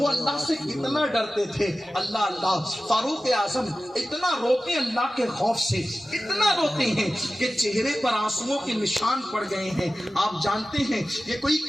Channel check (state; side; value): normal; both; correlation 0.95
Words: اللہ سے کتنا ڈرتے تھے. اللہ اللہ فاروق اعظم اتنا روتے ہیں اللہ کے خوف سے، اتنا روتے ہیں کہ چہرے پر آنسوؤں کے نشان پڑ گئے ہیں. آپ جانتے ہیں یہ کوئی